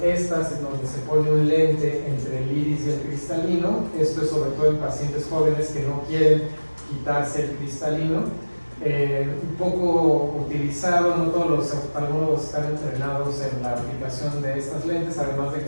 estas en donde se pone un lente entre el iris y el cristalino. Esto es sobre todo en pacientes jóvenes que no quieren quitarse el cristalino. Un poco utilizado, no todos los oftalmólogos están entrenados en la aplicación de estas lentes, además de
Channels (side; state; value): both; inverted; correlation -1.00